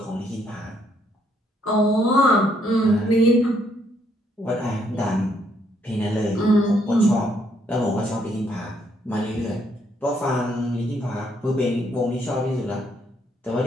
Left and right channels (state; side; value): normal; both; correlation 0.71